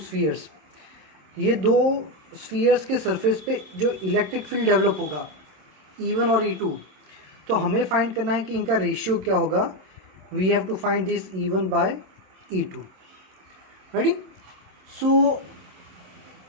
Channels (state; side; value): late; left; 26 ms